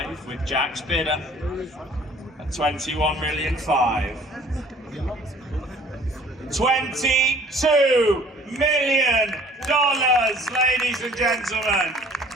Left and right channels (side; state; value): both; normal; correlation 0.53